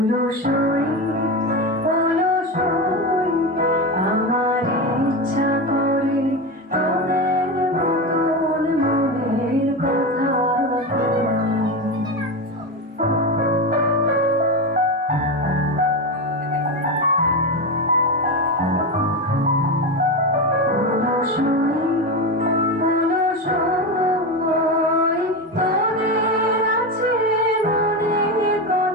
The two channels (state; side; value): normal; both; correlation 0.17